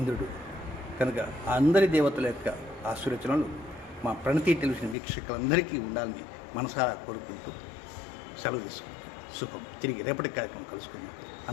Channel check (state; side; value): drops out; right; at 5.0 s